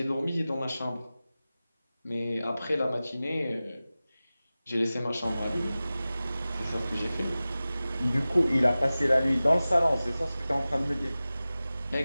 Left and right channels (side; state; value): both; inverted; correlation -0.96